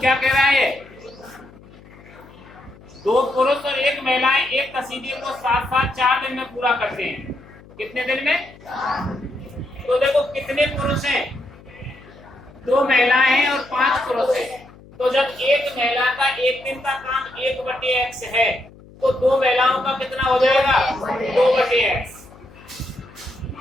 कह रहा है? दो पुरुष और एक महिलाएं एक कसीदे को साथ साथ 4 दिन में पूरा करते हैं। कितने दिन में? तो देखो कितने पुरुष हैं? 2 महिलाएं हैं और 5 पुरुष हैं। तो जब एक महिला का एक दिन का काम 1/x है तो 2 महिलाओं का कितना हो जाएगा? 2/x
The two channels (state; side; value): noise; left; hum, 22 dB below the sound